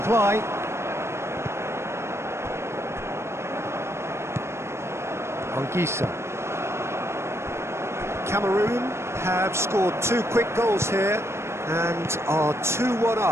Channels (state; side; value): late; left; 0.13 ms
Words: Anguissa. Cameroon have scored 2 quick goals here and are 2-1